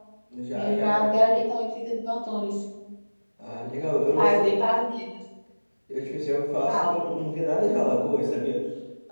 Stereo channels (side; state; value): both; inverted; correlation -1.00